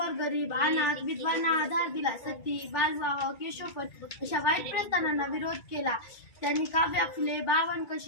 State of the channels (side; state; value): right; late; 2.3 ms